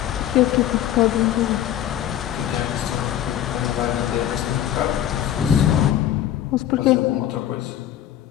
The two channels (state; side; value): quieter; right; 11.4 dB